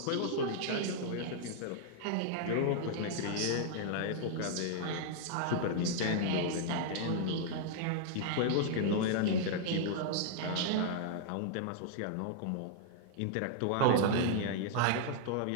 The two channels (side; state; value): both; different; correlation -0.01